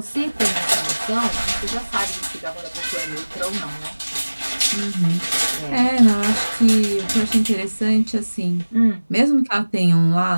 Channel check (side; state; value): both; inverted; correlation -1.00